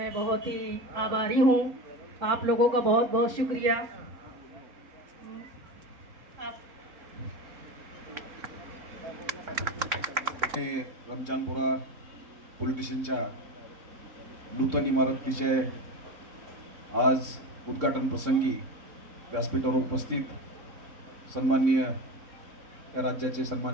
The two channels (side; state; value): left; late; 3.6 ms